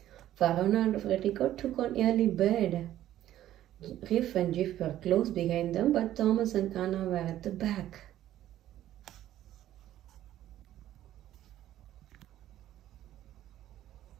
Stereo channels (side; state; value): left; quieter; 12.9 dB